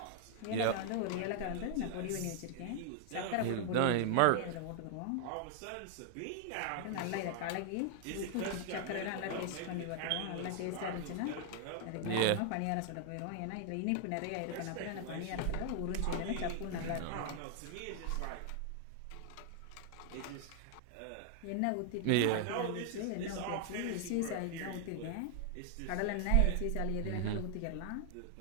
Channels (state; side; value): different; both; correlation 0.00